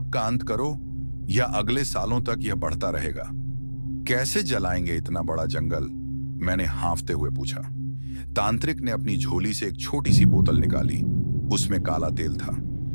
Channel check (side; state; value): both; inverted; correlation -1.00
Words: का अंत करो या अगले सालों तक यह बढ़ता रहेगा। कैसे जलाएंगे इतना बड़ा जंगल? मैंने हांफते हुए पूछा। तांत्रिक ने अपनी झोली से एक छोटी सी बोतल निकाली। उसमें काला तेल था।